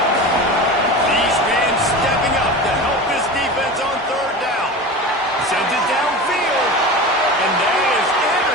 These men stepping up to help this defense on third down. Sends it downfield. And that is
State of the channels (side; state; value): both; normal; correlation 0.30